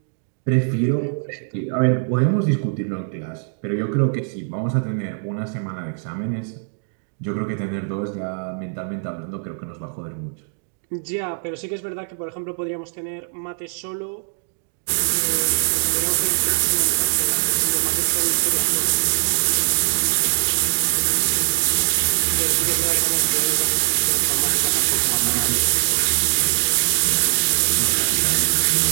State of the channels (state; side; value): silent; left; digital silence